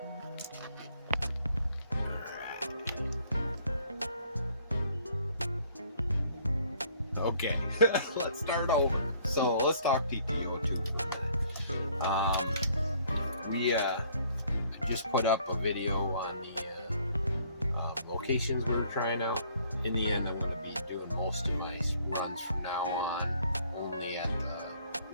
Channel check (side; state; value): both; inverted; correlation -0.61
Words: Okay, let's start over. So let's talk TT-02 for a minute. We just put up a video on the locations we were trying out. In the end, I'm going to be doing most of my runs from now on only at